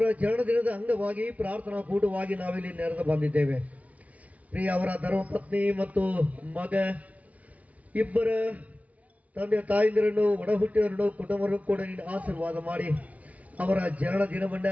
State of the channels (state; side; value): late; left; 0.069 ms